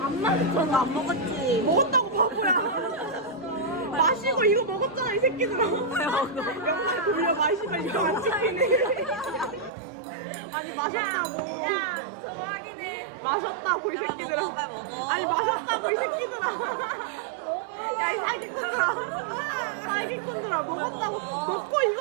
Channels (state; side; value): drops out; left; at 9.7 s